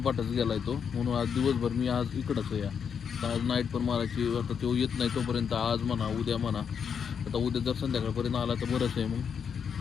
गेलाय तो. म्हणून आज दिवसभर मी आज इकडंच आहे. आज नाईट पण मारायची. आता तो येत नाही तोपर्यंत आज म्हणा उद्या म्हणा. आता उद्या जर संध्याकाळपर्यंत आला तर बरंच आहे मग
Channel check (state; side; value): quieter; right; 7.1 dB